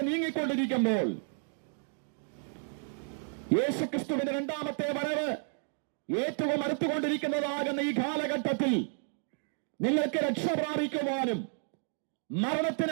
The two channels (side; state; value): left; silent; 57 dB below the other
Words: നീങ്ങിക്കൊണ്ടിരിക്കുമ്പോൾ, യേശുക്രിസ്തുവിന്റെ രണ്ടാമത്തെ വരവ് ഏറ്റവും അടുത്തുകൊണ്ടിരിക്കുന്നതാകുന്ന ഈ കാലഘട്ടത്തിൽ നിങ്ങൾക്ക് രക്ഷ പ്രാപിക്കുവാനും